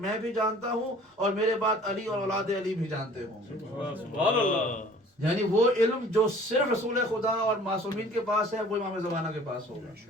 بھی جانتا ہوں اور میرے بعد علی اور اولاد علی بھی جانتے ہوں. سبحان اللہ. یعنی وہ علم جو صرف رسول خدا اور معصومین کے پاس ہے وہ امام زمانہ کے پاس ہوگا.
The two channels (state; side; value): normal; both; correlation 0.50